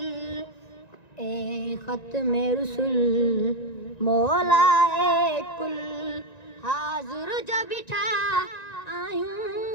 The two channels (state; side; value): late; right; 1.9 ms